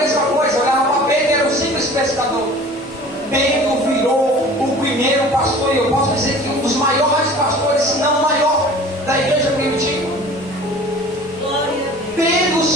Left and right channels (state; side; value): normal; both; correlation 0.44